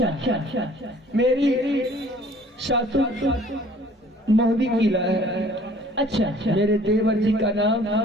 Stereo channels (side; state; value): both; normal; correlation 0.53